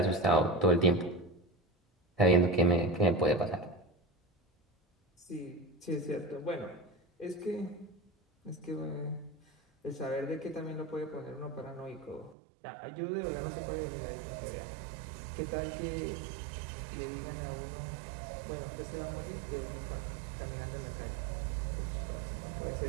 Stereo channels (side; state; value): left; drops out; at 12.4 s